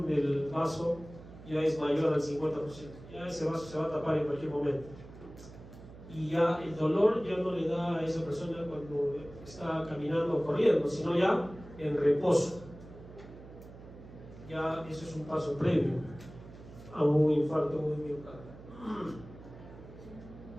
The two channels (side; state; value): right; noise; hum, 17 dB below the sound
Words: del vaso ya es mayor al 50%, ya ese vaso se va a tapar en cualquier momento. Y ya el dolor ya no le da a esa persona cuando está caminando o corriendo, sino ya en reposo. Ya eso es un paso previo a un infarto de miocardio.